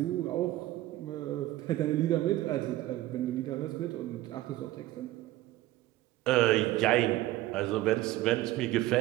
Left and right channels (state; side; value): quieter; left; 16.1 dB